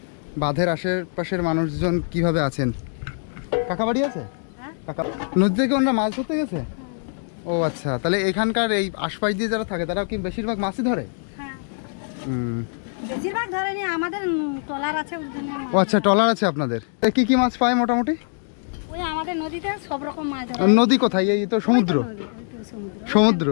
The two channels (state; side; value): silent; right; 63 dB below the other